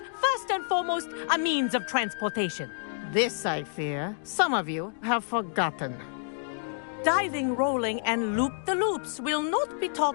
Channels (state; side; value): silent; right; digital silence